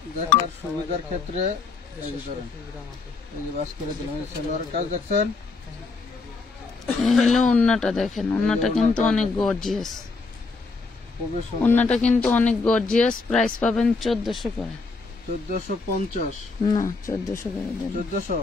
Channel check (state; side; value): quieter; right; 4.1 dB